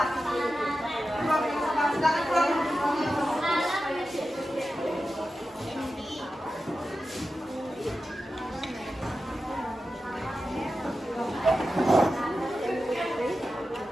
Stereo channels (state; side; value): normal; both; correlation 0.92